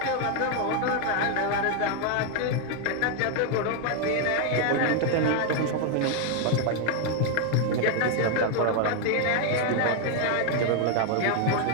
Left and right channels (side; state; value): both; different; correlation 0.01